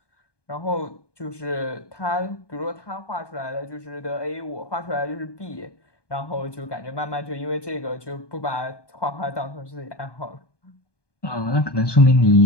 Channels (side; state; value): right; late; 1.2 ms